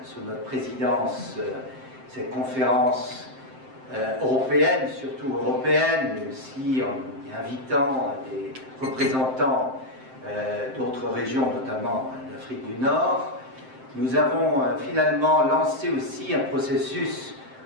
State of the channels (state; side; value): late; left; 7.7 ms